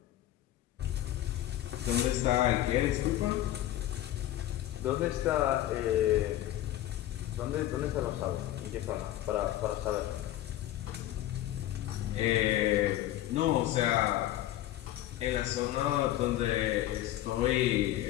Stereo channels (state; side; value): quieter; right; 13.8 dB